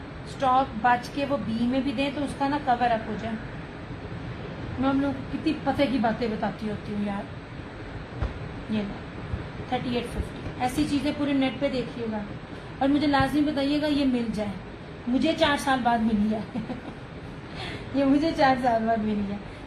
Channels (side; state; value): both; identical; correlation 1.00